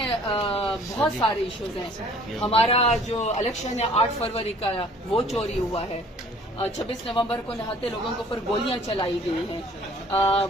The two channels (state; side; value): normal; both; correlation 0.53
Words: بہت سارے ایشوز ہیں۔ ہمارا جو الیکشن ہے 8 فروری کا، وہ چوری ہوا ہے۔ 26 نومبر کو نہاتے لوگوں کے اوپر گولیاں چلائی گئی ہیں۔